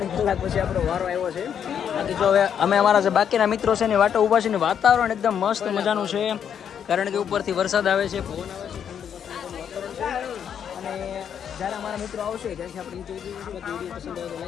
કલાક પછી આપણો વારો આવ્યો છે. બાકી જો હવે અમે અમારા જે બાકીના મિત્રો છે એની વાટો ઊભા છે ને વાતાવરણ એકદમ મસ્ત મજાનું છે. કારણ કે ઉપરથી વરસાદ આવે છે, પવન આવે છે, અને જ્યારે અમારા મિત્રો આવશે ત્યાંથી આપણે નીચે જઈશું. બાકી વિડીયો પસંદ આવે તો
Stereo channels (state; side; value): quieter; right; 8.4 dB